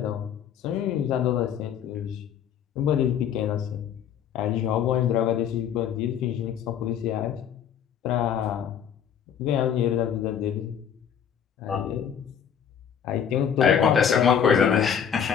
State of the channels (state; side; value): quieter; right; 8.4 dB